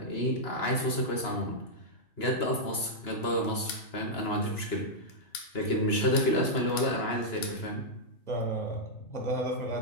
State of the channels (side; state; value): right; late; 2.9 ms